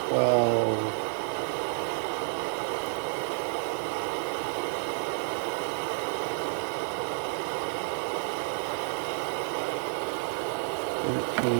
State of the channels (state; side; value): silent; left; digital silence